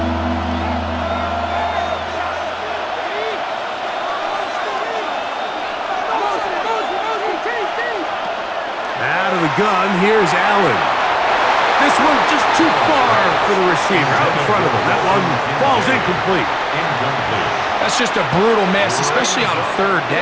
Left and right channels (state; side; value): identical; both; correlation 1.00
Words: Out of the gun, here's Allen. This one just too far for the receiver out in front of him. That one falls incomplete. That's just a brutal miss, especially on 3rd